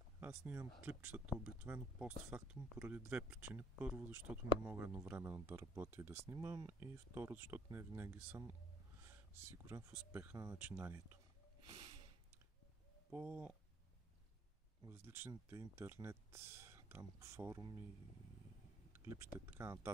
Аз снимам клипчетата обикновено постфактум поради две причини. Първо, защото не мога едновременно да работя и да снимам, и второ, защото не винаги съм сигурен в успеха на начинанието. По различните интернет форуми, клипчета и така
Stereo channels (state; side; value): normal; both; correlation 0.60